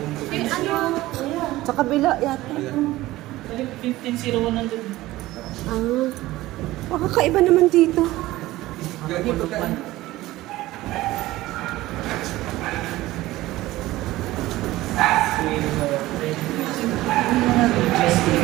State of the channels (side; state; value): left; quieter; 17.3 dB